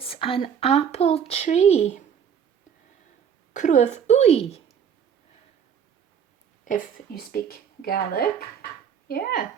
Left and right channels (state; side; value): quieter; left; 7.9 dB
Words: an apple tree. Cruamh uí, if you speak Gaelic. Yeah,